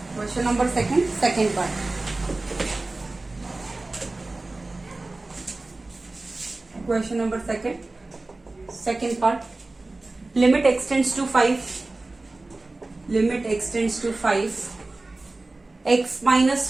Question number second part. Question number second part. Limit x tends to 5. Limit x tends to 5. X minus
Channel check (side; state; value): left; quieter; 3.1 dB